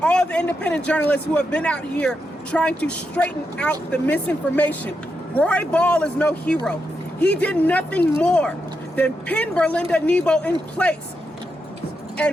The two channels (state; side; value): normal; both; correlation 0.84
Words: all the independent journalists who have been out here trying to straighten out the misinformation. Roy Ball is no hero. He did nothing more than pin Berlinda Nibo in place